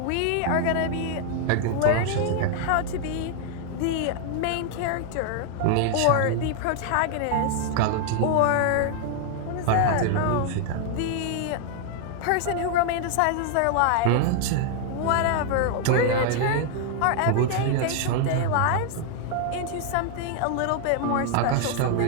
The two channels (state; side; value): different; both; correlation 0.00